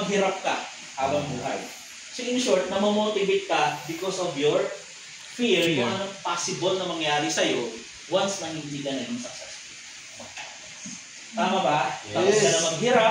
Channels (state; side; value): identical; both; correlation 1.00